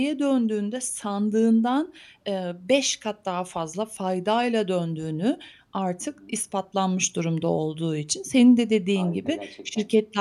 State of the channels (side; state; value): both; identical; correlation 1.00